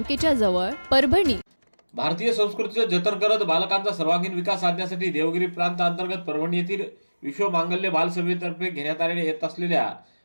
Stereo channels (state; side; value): inverted; both; correlation -1.00